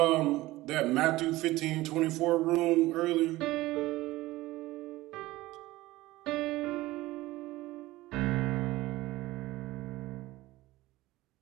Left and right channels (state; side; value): quieter; left; 18.2 dB